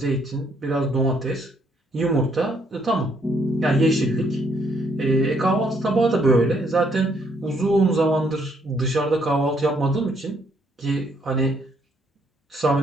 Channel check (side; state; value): both; normal; correlation 0.70